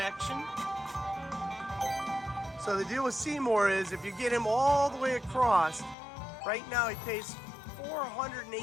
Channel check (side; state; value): right; drops out; at 6.0 s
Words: So the deal with Seymour is if you get him all the way across, right now he pays